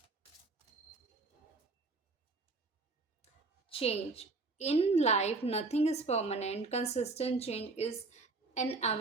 change. In life, nothing is permanent. Consistent change is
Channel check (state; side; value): quieter; left; 3.6 dB